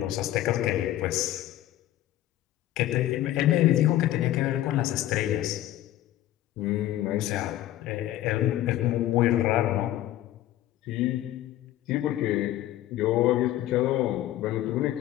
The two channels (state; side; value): quieter; right; 14.0 dB